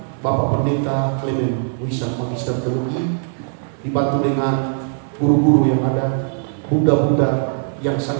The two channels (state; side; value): silent; left; digital silence